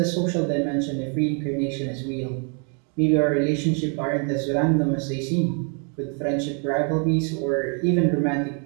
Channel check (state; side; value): quieter; left; 39.2 dB